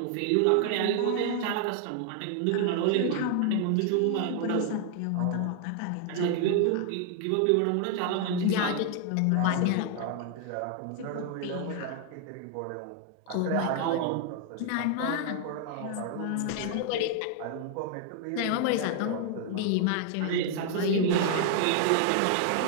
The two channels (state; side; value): different; both; correlation 0.00